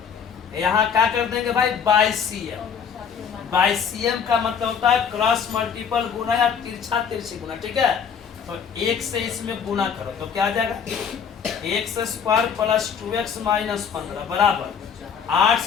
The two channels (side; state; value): right; quieter; 7.0 dB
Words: यहाँ क्या कर देंगे भाई, बाय सीएम। बाय सीएम का मतलब होता है क्रॉस मल्टीपल गुना या तिरछा तिरछी गुना, ठीक है। तो 1 से इसमें गुना करो, तो क्या आ जाएगा, x² प्लस 2x माइनस 15 बराबर 8